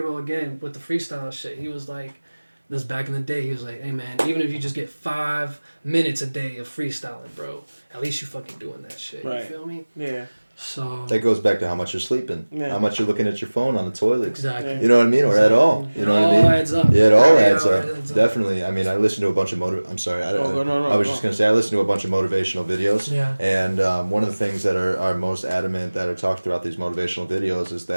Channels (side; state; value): both; inverted; correlation -1.00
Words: again with the freestyle shit. He was like, this back in the day, he was like, hey man, even if you just get 5 minutes a day of freestyling, bro, at least you fucking doing that shit. Right. You feel me? Yeah. So That goes back to how much you're sleeping, how much you're looking at your phone on the toilet. exactly. You know what I mean? Or at all. You know what I mean? It all adds up. Yeah, it all Yeah, adds it up. adds up. Definitely. I mean, I listen to a bunch of I'm sorry. I was just going to say, I listen to a bunch of motivational videos. Yeah. And one of the things that are most adamant that are talked throughout these motivational videos is